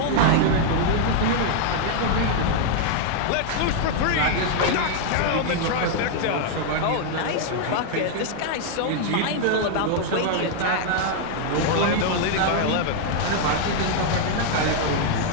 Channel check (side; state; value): both; different; correlation 0.00